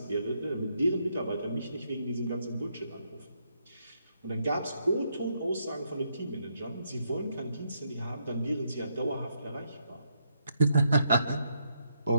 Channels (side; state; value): both; inverted; correlation -0.77